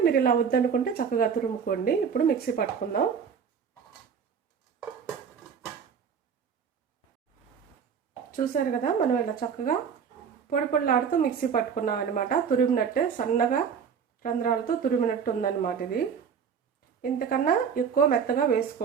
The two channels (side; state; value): left; quieter; 6.9 dB